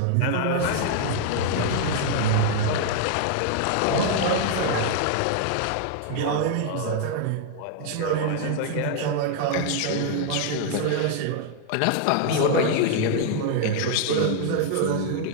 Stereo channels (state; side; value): different; both; correlation 0.00